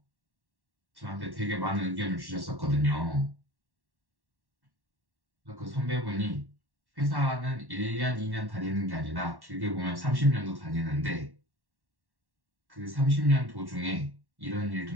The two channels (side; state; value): left; late; 1.1 ms